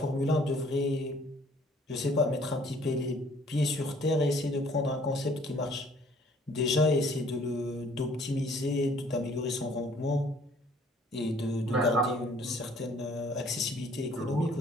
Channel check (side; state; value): both; normal; correlation 0.58